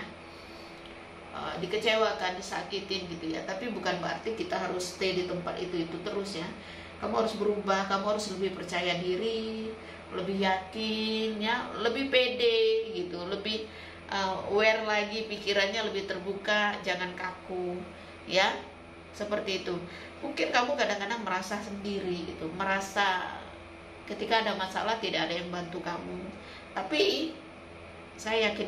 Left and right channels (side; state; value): both; identical; correlation 1.00